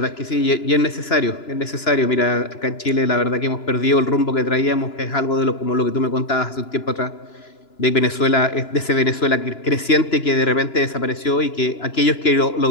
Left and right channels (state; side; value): late; right; 2.9 ms